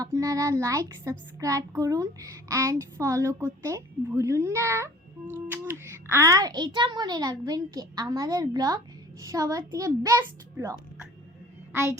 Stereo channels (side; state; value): both; normal; correlation 0.49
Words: আপনারা লাইক সাবস্ক্রাইব করুন অ্যান্ড ফলো করতে ভুলুন না আর এটা মনে রাখবেন কি আমাদের ব্লগ সবার থেকে বেস্ট ব্লগ আর